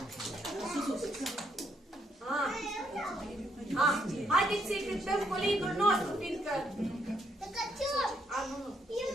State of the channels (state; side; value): normal; both; correlation 0.74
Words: Haideți să-i cântăm colinul nostru, fiindcă...